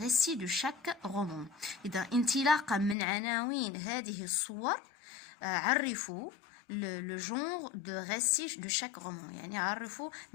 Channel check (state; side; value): drops out; right; at 3.0 s